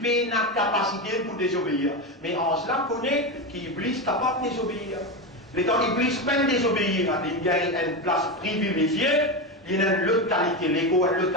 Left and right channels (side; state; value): both; normal; correlation 0.16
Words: une capacité pour désobéir. Mais Ange là connaît qu'Iblis est capable de désobéir. Les temps Iblis peine désobéir, il y a une place privilégiée, il y a une autre qualité, l'ego, une